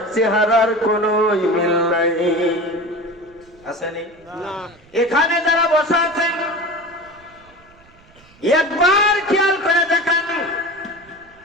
চেহারার কোনো মিল নাই। আসেনি? এখানে যারা বসে আছেন একবার খেয়াল করে দেখেন,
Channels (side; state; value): right; noise; rumble, 28 dB below the sound